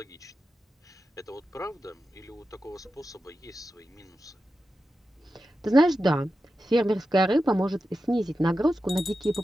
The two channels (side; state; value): both; normal; correlation 0.91